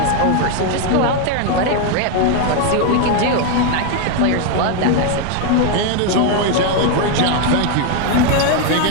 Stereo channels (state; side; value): different; both; correlation 0.01